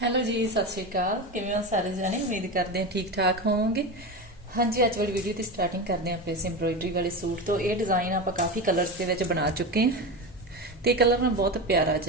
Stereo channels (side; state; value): both; normal; correlation 0.21